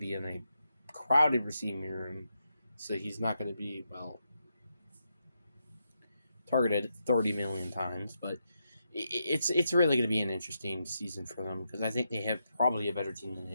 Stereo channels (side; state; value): both; inverted; correlation -0.84